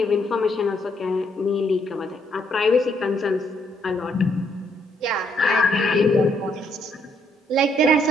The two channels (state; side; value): normal; both; correlation 0.72